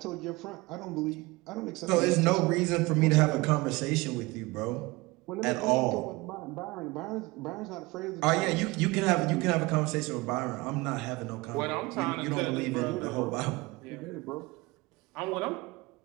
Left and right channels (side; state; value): left; quieter; 22.7 dB